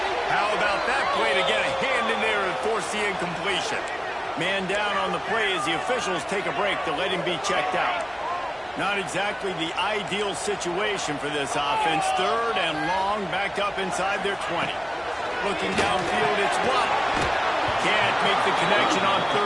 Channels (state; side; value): identical; both; correlation 1.00